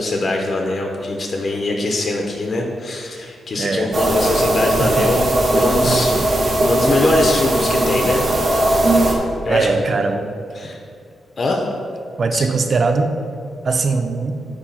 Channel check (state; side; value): normal; both; correlation 0.85